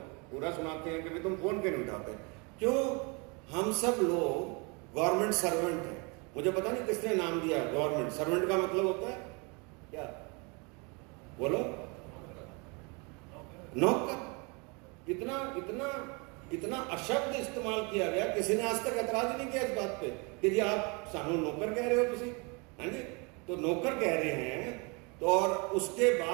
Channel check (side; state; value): left; quieter; 31.0 dB